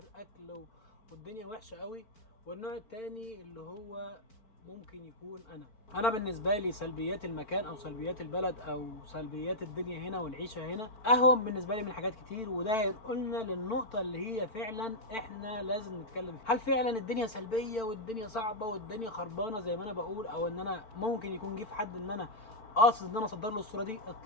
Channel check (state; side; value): late; right; 4.5 ms